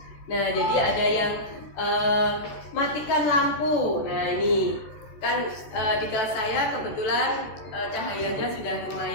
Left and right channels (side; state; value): right; late; 14 ms